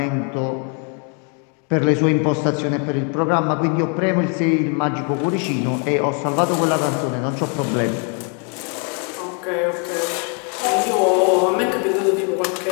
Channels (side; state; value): right; quieter; 38.8 dB